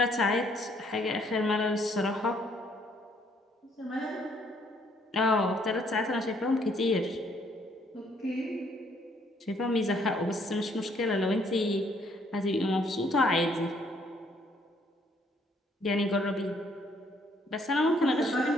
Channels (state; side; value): normal; both; correlation 0.66